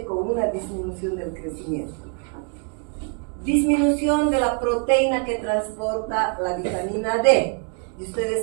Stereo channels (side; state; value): left; quieter; 38.6 dB